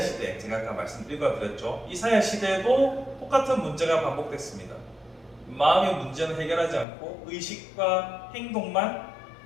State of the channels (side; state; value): right; drops out; at 6.9 s